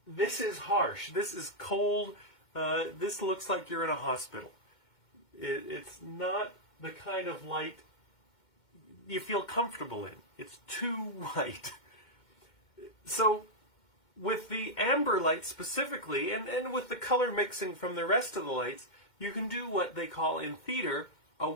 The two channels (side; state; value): right; late; 2.1 ms